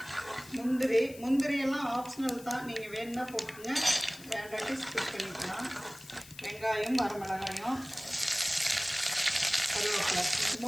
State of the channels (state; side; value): noise; left; hiss, 19 dB below the sound